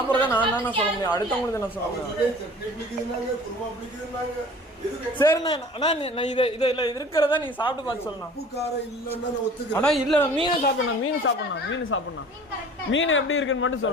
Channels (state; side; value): normal; both; correlation 0.46